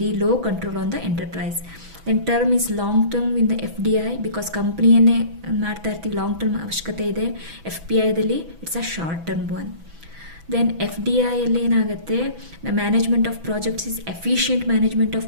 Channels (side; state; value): left; late; 6.0 ms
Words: low control on the enterprise. Then term is long term in the FDI because ಕಂಪ್ನಿಯನ್ನೇ ಮಾಡ್ತಾ ಇರ್ತೀವಿ, long term ಅವಶ್ಯಕತೆ ಇದೆ. FPIದಲ್ಲಿ it's a short term one. Then FDIಯಲ್ಲಿ ಏನಾಗುತ್ತೆ? The management of projects is efficient management of